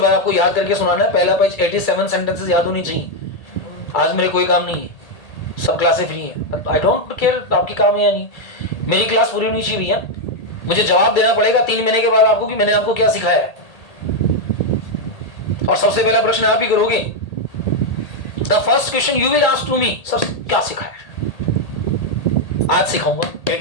बाद आपको याद करके सुनाना है। पहला पेज 87 सेंटेंसेस याद होनी चाहिए। आज मेरे कोई काम नहीं है, सब क्लासें फ्री हैं। आई डोंट केयर आपकी काम है या नहीं, मेरी क्लास पूरी होनी चाहिए भैया। मुझे जवाब देना पड़ेगा 3 महीने के बाद आपको कि मैंने आपको क्या सिखाया है। और सबसे पहला प्रश्न आप ही करोगे। The first question you will ask to me, sir क्या सिखाया है? आज सिखाऊंगा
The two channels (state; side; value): late; right; 1.8 ms